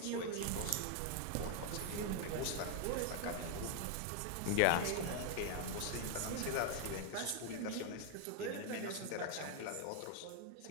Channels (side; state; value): both; different; correlation 0.00